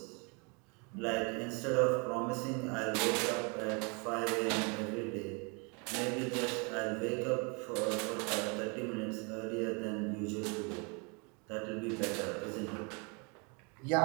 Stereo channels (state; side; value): quieter; left; 32.9 dB